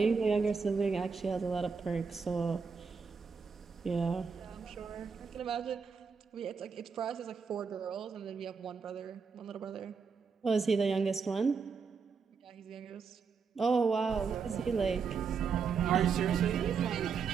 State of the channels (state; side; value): quieter; left; 5.6 dB